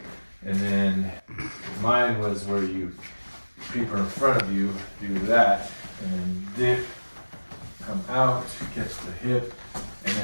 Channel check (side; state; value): both; inverted; correlation -1.00